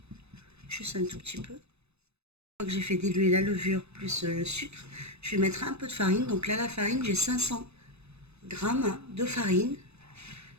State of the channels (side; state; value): left; late; 0.80 ms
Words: Juste un tout petit peu. Une fois que j'ai fait diluer la levure plus le sucre, je vais mettre un peu de farine. Donc là la farine, j'ai 500 grammes de farine.